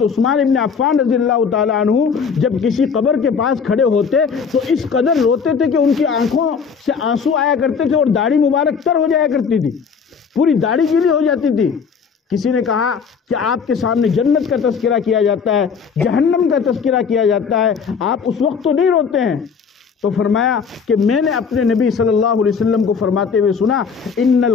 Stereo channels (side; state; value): right; quieter; 6.0 dB